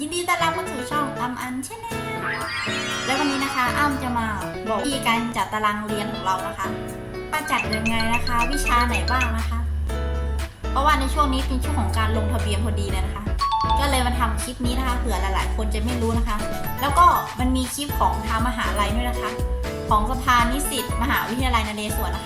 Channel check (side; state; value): both; identical; correlation 1.00